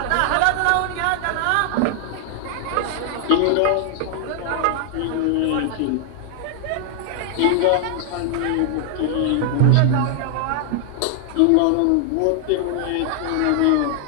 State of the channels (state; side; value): different; both; correlation 0.00